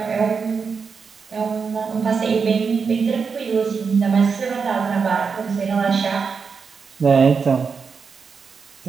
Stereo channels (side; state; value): left; quieter; 5.6 dB